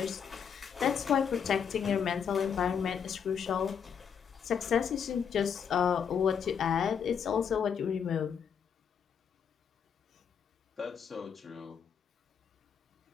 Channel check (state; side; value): quieter; right; 7.3 dB